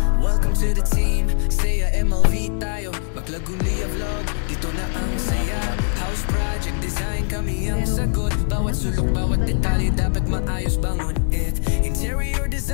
welcome to the team. Saya MLV tayo, Maklagunia vlog. Dito na ang saya. House project design, kami ang sagot. Bawat sulok, bawat detalye dapat maayos bangon it. Interior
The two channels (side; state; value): right; silent; digital silence